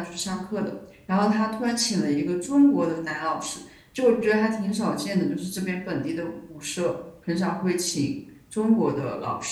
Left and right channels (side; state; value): both; identical; correlation 1.00